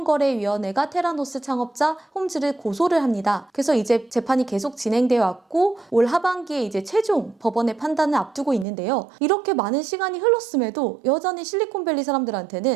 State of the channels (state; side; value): drops out; left; at 8.7 s